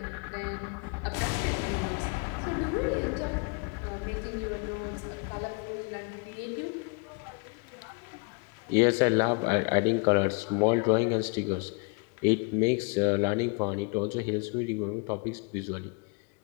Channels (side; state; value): right; quieter; 33.4 dB